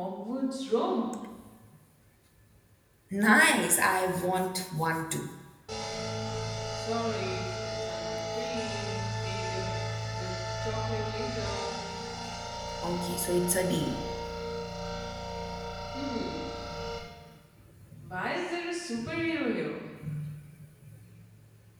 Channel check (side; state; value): both; identical; correlation 1.00